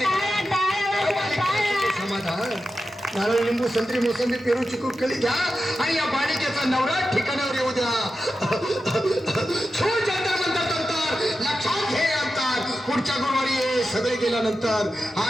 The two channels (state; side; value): normal; both; correlation 0.91